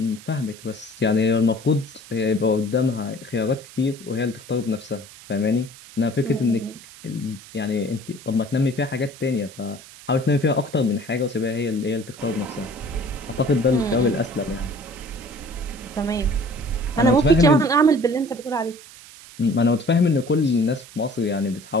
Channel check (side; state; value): right; noise; hiss, 19 dB below the sound